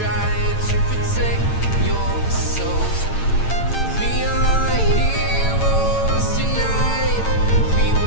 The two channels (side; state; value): right; late; 8.9 ms